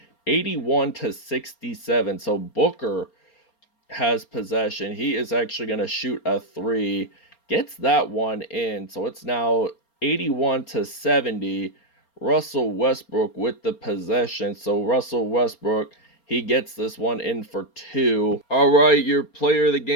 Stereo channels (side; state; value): right; late; 4.3 ms